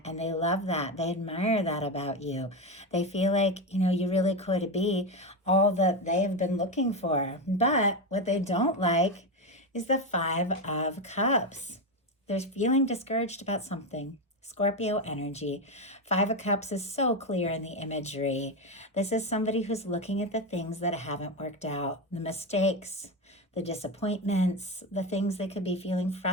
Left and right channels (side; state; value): both; normal; correlation 0.14